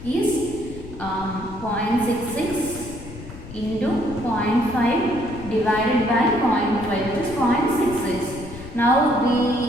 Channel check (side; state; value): left; noise; rumble, 14 dB below the sound